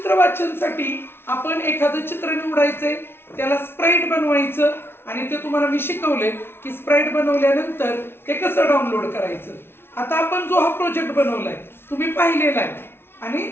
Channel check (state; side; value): late; right; 0.11 ms